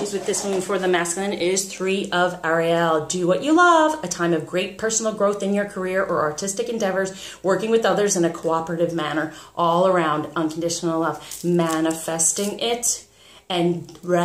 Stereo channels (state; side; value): identical; both; correlation 1.00